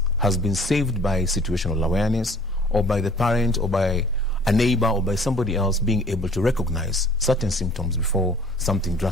has been saved by situational awareness, or by the parent, or by a neighbor, or by somebody else being able to recognize certain symptoms before something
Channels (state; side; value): normal; both; correlation 0.52